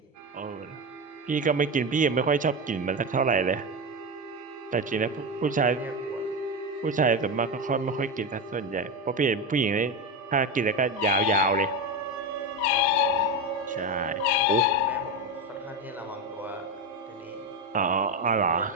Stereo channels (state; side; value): normal; both; correlation 0.16